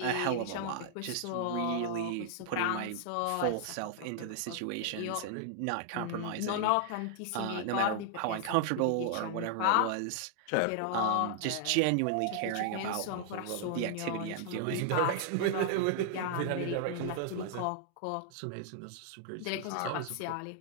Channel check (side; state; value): both; different; correlation -0.01